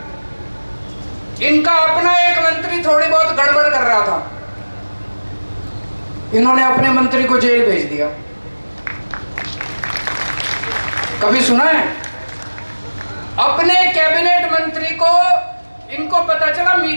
इनका अपना एक मंत्री थोड़ी बहुत गड़बड़ कर रहा था, इन्होंने अपने मंत्री को जेल भेज दिया। कभी सुना है? अपने कैबिनेट मंत्री को इनको पता चला,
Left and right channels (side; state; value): both; inverted; correlation -1.00